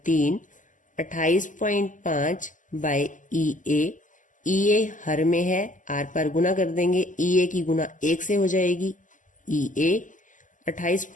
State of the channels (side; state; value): right; late; 0.37 ms